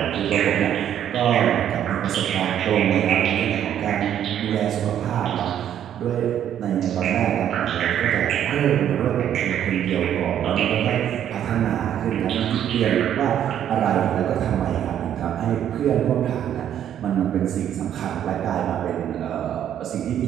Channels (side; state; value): left; quieter; 10.2 dB